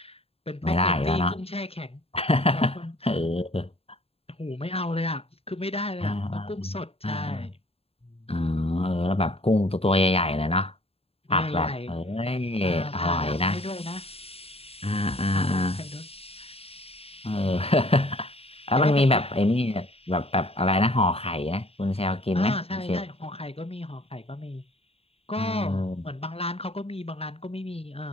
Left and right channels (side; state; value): right; late; 0.29 ms